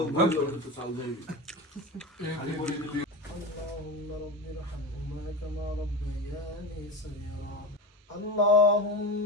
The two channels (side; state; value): both; normal; correlation 0.24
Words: বলবো তো চাল দেই। اللهم رب ارحمهما كما ربياني صغيرا. اللهم